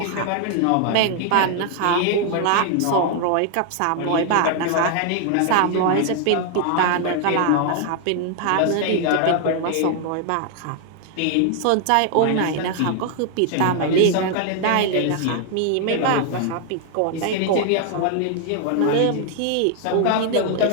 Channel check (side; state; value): both; different; correlation 0.00